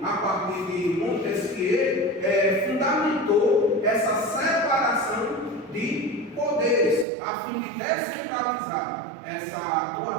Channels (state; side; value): drops out; left; at 7.1 s